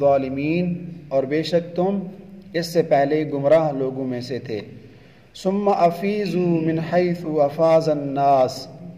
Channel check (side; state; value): both; identical; correlation 1.00